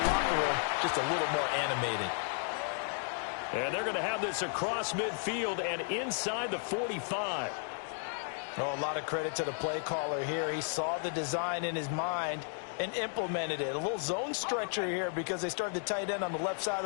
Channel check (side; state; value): right; silent; 55 dB below the other